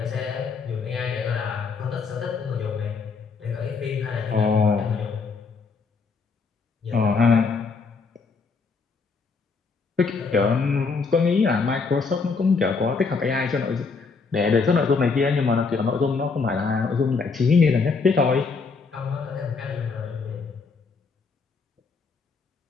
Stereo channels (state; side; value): quieter; right; 4.7 dB